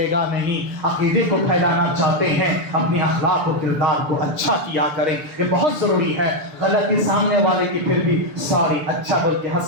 گا نہیں. عقیدے کو پھیلانا چاہتے ہیں، اپنی اخلاق و کردار کو اچھا کیا کریں. یہ بہت ضروری ہے. غلطی سامنے والے کی پھر بھی سوری اچھا بول کے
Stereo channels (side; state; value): left; late; 6.9 ms